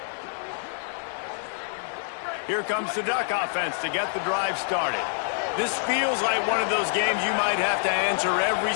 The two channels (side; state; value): right; silent; digital silence